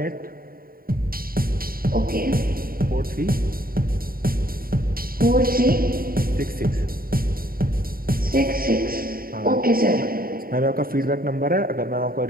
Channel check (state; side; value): late; left; 0.43 ms